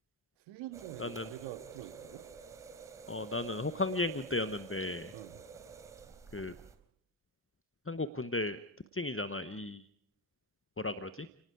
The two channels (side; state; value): both; normal; correlation 0.09